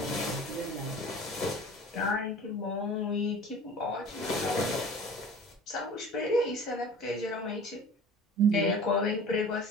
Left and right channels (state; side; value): normal; both; correlation 0.42